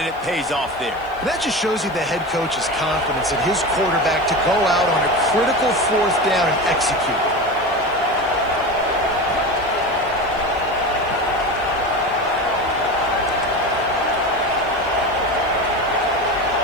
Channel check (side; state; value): right; noise; hiss, 29 dB below the sound